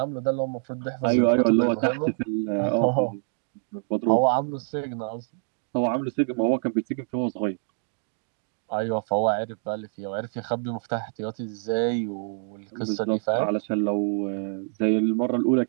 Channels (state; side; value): silent; left; digital silence